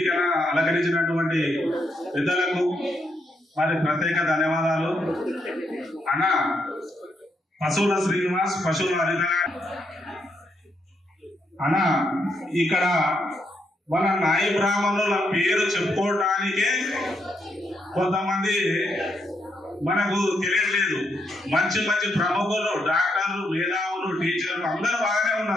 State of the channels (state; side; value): normal; both; correlation 0.78